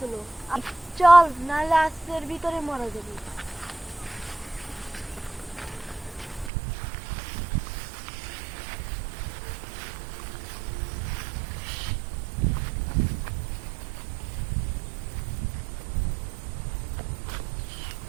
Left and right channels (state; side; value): drops out; left; at 6.5 s